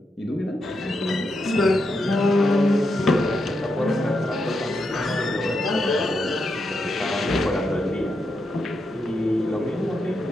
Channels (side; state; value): both; normal; correlation 0.84